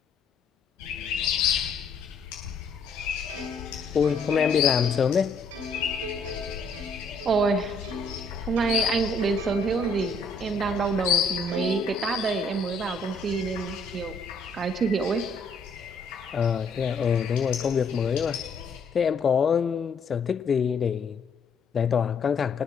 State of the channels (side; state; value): right; quieter; 3.0 dB